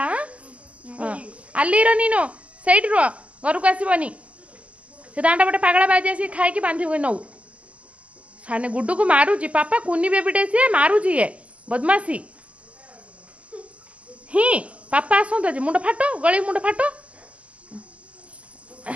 ಅಲ್ಲಿರೋ ನೀನು ସେଇଠି ରୁହ ଘରକୁ ଆସିବନି ସେ ଦାଣ୍ଡ ପଟେ ପାଗଳା ବାଜି ଆସିକି ଖାଇକି ବାନ୍ଧିବୁ ନଉ ସାନେ ଗୁଡୁକୁ ମାରୁଛି ପାପା କୁନି ବେବିଟେ ସିଏ ମାରୁଛି ଇଏ ବଦମାସି ହିଁ ପାପା ଆସନ୍ତୁ ଆଜି ମୁଣ୍ଡ ଫାଟ ଗଳି ମୁଣ୍ଡ ଫାଟ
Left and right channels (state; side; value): late; left; 0.064 ms